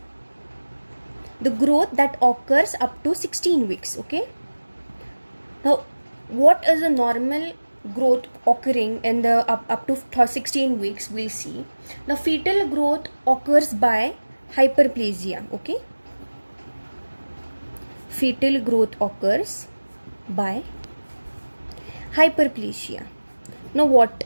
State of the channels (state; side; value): inverted; both; correlation -1.00